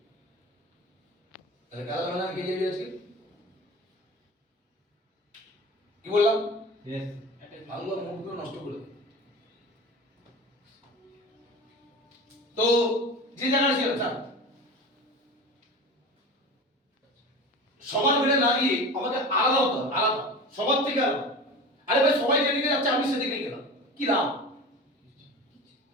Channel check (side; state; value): both; normal; correlation 0.33